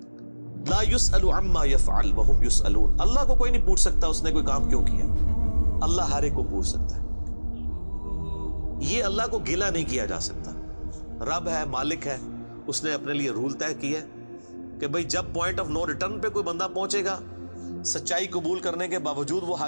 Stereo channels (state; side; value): inverted; both; correlation -1.00